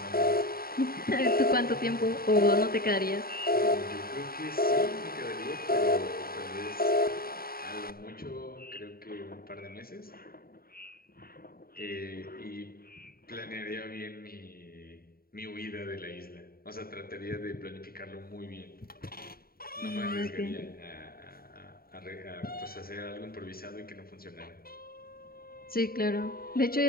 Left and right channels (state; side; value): late; right; 0.43 ms